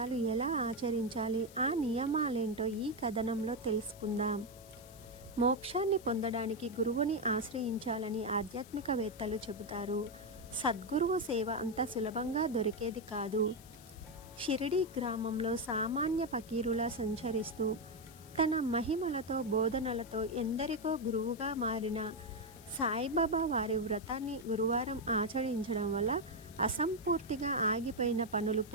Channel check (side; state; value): left; noise; hiss, 21 dB below the sound